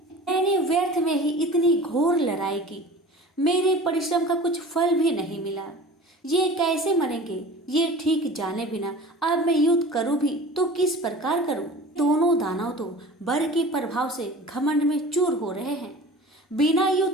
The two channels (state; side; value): normal; both; correlation 0.40